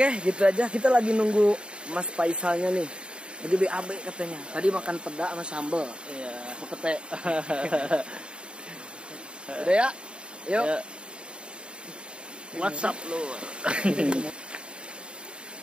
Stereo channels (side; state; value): left; late; 0.053 ms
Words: gitu aja. Kita lagi nunggu Mas Faisalnya nih. Lagi BAB katanya. Tadi makan peda sama sambal. Iya. Pete. Udah ya? Yuk. Ya. WhatsApp lu.